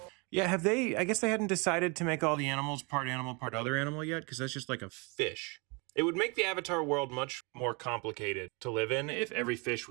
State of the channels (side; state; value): left; quieter; 30.5 dB